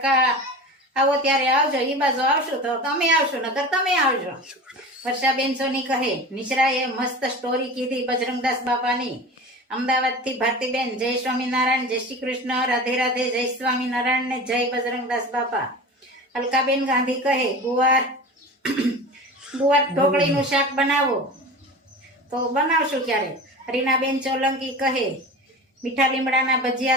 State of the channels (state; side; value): normal; both; correlation 0.33